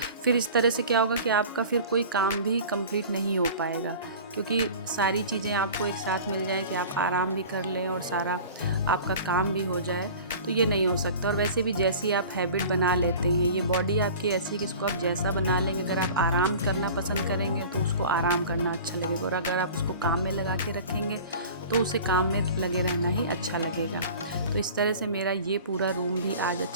फिर इस तरह से क्या होगा कि आपका फिर कोई काम भी कंप्लीट नहीं हो पाएगा, क्योंकि सारी चीज़ें आपको एक साथ मिल जाएं कि आप आराम भी कर लें और सारा आपका काम भी हो जाए। तो ये नहीं हो सकता। और वैसे भी जैसी आप हैबिट बना लेते हैं, ये बॉडी आपकी ऐसी कि इसको आप जैसा बना लेंगे, अगर आप आराम करना पसंद करेंगे तो उसको आराम करना अच्छा लगेगा, और अगर आप उसको काम में लगा के रखेंगे तो उसे काम में लगे रहना ही अच्छा लगेगा। तो इस तरह से मेरा ये पूरा रूम भी आज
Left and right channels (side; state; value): both; inverted; correlation -0.40